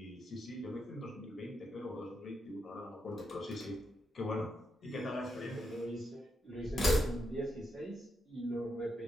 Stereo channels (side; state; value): both; normal; correlation 0.83